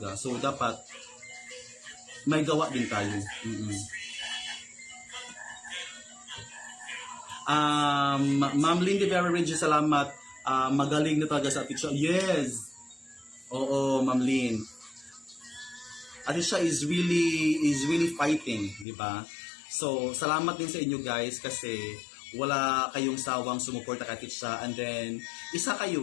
So, dapat may gawa din tayo. Ma'am Lindy Vera Regis, salamat. Magaling na talaga sa Atisha. Yes! Oo, Ma'am Lynn. Atisha is really fighting, di ba? So, salamat din sa inyo guys kasi wala kayong sawang sumuporta kay Atisha and then isa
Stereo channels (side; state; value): right; drops out; at 18.9 s